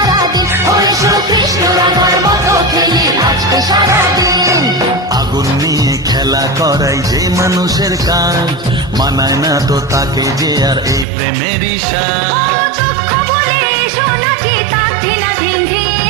এসো কৃষ্ণ রাধার মতো খেলি আজকে সারাদিন। আগুন নিয়ে খেলা করাই যে মানুষের কাজ, মানায় না তো তাকে যে আর এই প্রেমেরই সাজ। দুঃখ বলে এসো নাচি তার ধিনা ধিন ধিন,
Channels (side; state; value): left; drops out; at 11.1 s